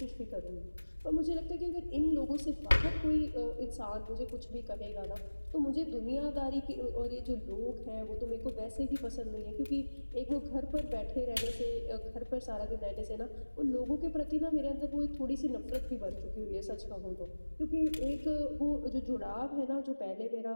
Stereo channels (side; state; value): both; inverted; correlation -1.00